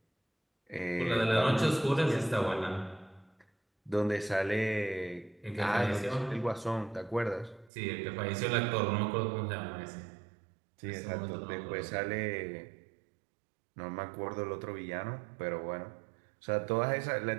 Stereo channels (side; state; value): left; drops out; at 7.7 s